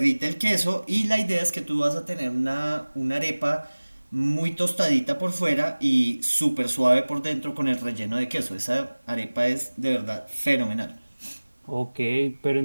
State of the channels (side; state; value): both; inverted; correlation -1.00